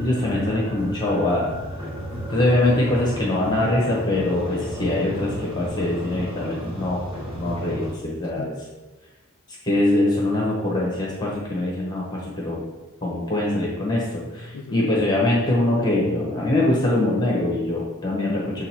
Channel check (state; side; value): normal; both; correlation 0.62